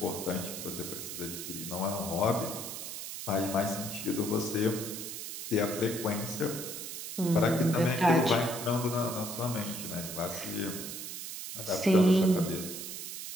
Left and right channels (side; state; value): right; noise; hiss, 7 dB below the sound